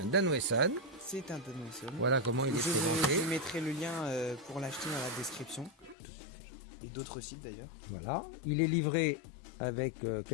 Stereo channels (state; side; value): drops out; right; at 6.0 s